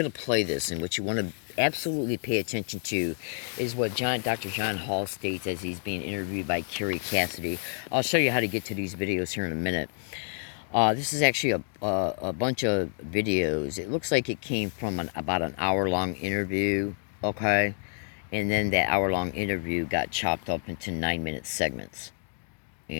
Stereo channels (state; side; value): silent; right; 59 dB below the other